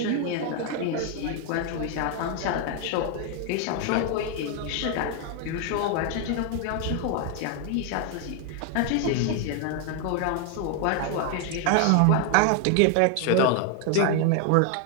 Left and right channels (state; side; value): different; both; correlation 0.00